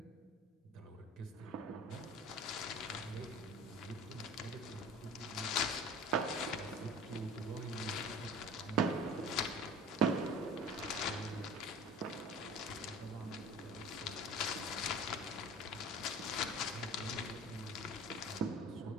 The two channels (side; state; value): both; normal; correlation 0.41